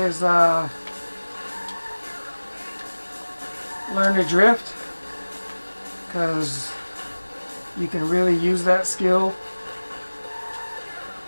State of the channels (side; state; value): both; inverted; correlation -1.00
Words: is learn to drift, because you can really use that skill.